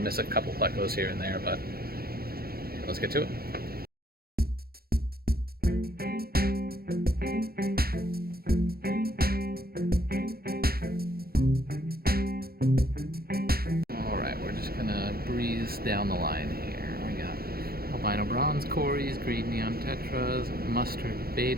a couple plecos here and there, but let's get to it. Alright, we're just going to breeze down the line here. We got albino bronze cories, green neon tetras, mustard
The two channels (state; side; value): late; left; 0.44 ms